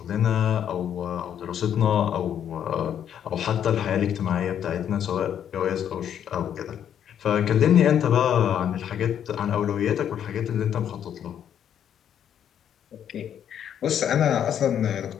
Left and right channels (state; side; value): quieter; right; 9.4 dB